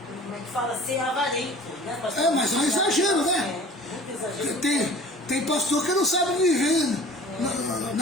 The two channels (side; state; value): both; normal; correlation 0.44